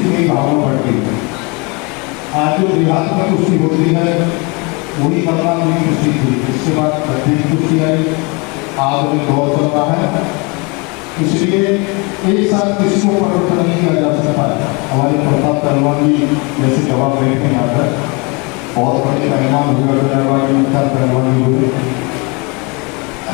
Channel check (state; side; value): quieter; right; 29.6 dB